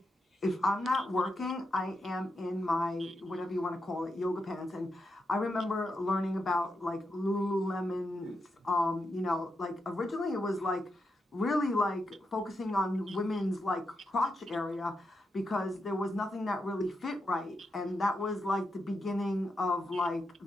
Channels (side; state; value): both; normal; correlation 0.85